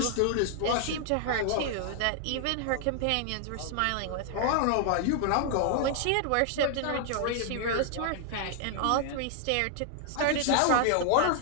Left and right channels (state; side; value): different; both; correlation 0.00